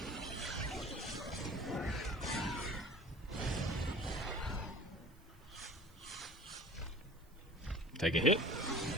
Take a hit.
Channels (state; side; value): noise; right; hiss, 30 dB below the sound